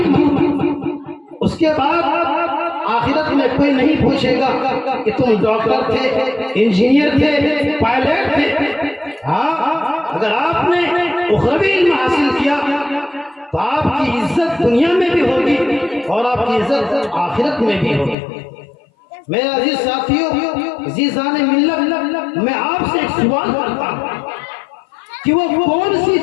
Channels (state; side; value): drops out; right; at 18.2 s